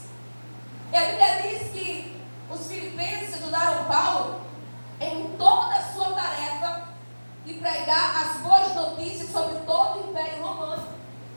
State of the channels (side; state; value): both; inverted; correlation -1.00